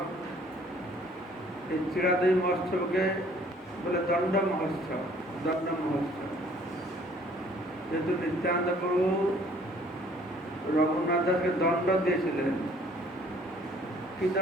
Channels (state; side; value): normal; both; correlation 0.58